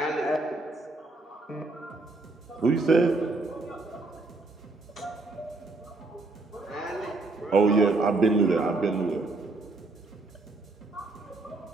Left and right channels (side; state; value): left; quieter; 3.2 dB